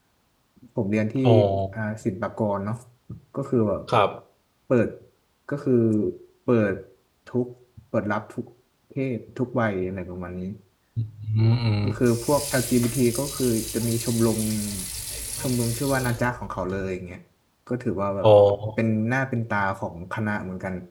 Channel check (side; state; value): both; identical; correlation 1.00